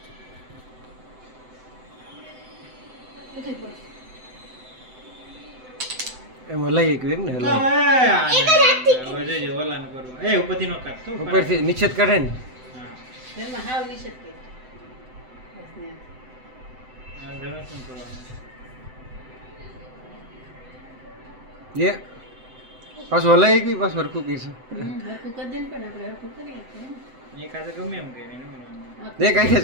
એમાં લઈ એક ને એક જ હાથથી હવે જે ઓલાને કરવું એ ઉપરથી નો કાઢતો ઉપરથી નિશ્ચિત કાઢે ને હા એમાં હાવ નિષેધ કરી આ ઘરે શું કરવાનું એ પાછું હલાઈ ગઈ પાછું હરખું કીધું હરખું કરી દે ને પણ આપણે હરખું કરીએ એ કાતે ગમે એમ કે એને બે કાંઈ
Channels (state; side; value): late; left; 7.8 ms